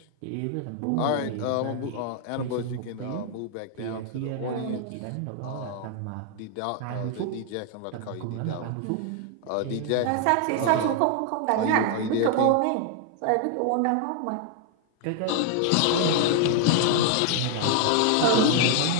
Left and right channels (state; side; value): different; both; correlation 0.00